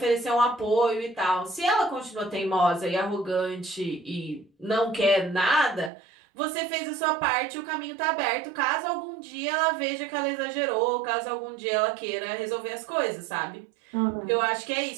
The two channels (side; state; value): left; drops out; at 5.9 s